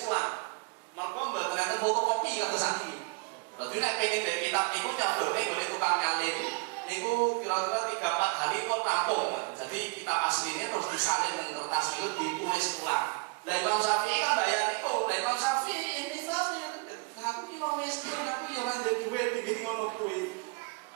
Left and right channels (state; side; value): quieter; left; 29.6 dB